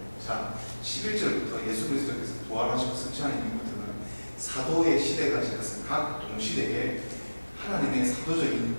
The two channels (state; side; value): inverted; both; correlation -1.00